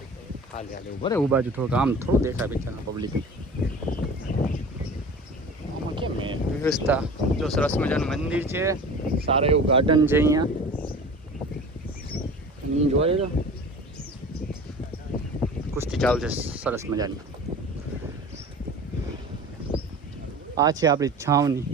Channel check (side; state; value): both; normal; correlation 0.39